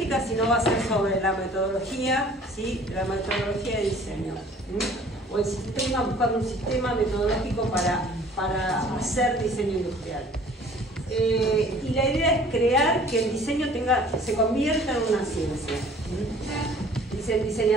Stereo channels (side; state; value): both; normal; correlation 0.51